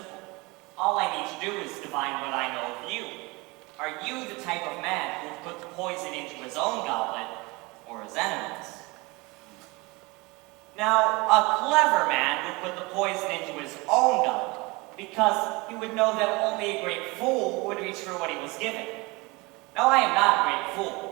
All I need to do is divine what I know of you. Are you the type of man who would put the poison into his own goblet, or his enemy's? Now, a clever man would put the poison into his own goblet, because he would know that only a great fool would reach for what he was given. Now, I am not a great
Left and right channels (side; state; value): left; quieter; 24.9 dB